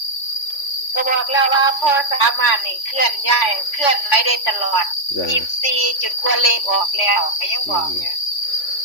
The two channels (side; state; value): right; late; 3.5 ms